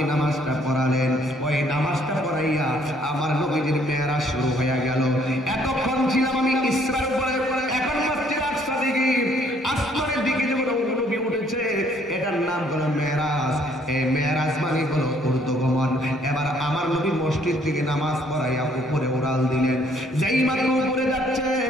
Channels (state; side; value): normal; both; correlation 0.64